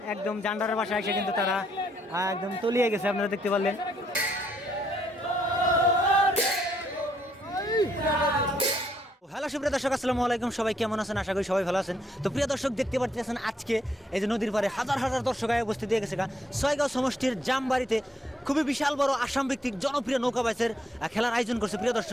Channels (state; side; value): normal; both; correlation 0.72